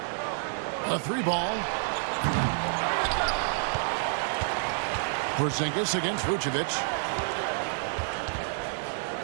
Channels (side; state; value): left; silent; digital silence